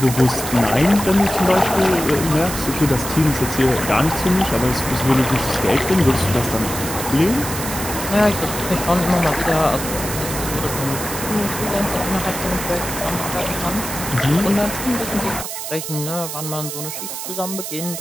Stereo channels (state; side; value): noise; right; hiss, 7 dB below the sound